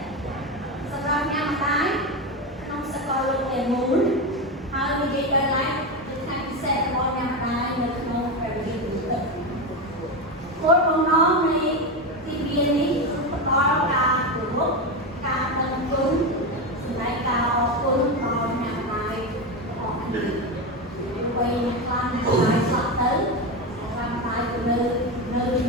សម្រាប់អ្នកម្ដាយក្នុងសកលលោកទាំងមូលហើយនិយាយដល់ឡែកជាថ្ងៃពិសេសរបស់អ្នកម្ដាយនៅក្នុងព្រះវិហារនេះគោលបំណងនៃទីវានេះគឺផ្ដល់ការគោរពការដឹងគុណសម្រាប់ការអរគុណដល់អ្នកម្ដាយរបស់គ្នាវ័យខ្លាំងអ្នកម្ដាយស្លាប់ទៅអ្នកម្ដាយក៏នៅជា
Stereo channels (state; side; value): normal; both; correlation 0.15